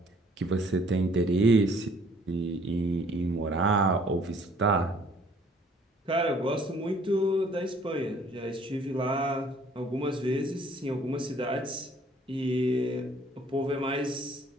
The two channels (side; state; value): both; normal; correlation 0.58